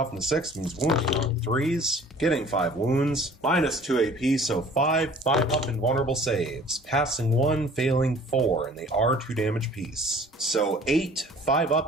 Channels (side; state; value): both; normal; correlation 0.50